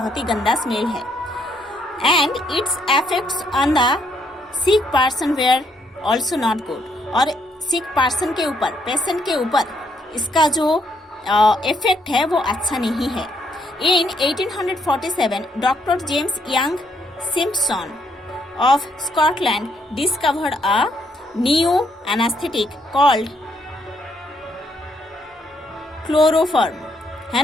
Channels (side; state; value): both; normal; correlation 0.73